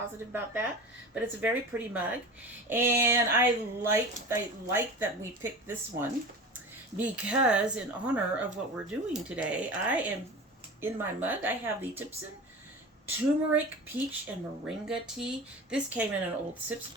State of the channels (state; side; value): normal; both; correlation 0.33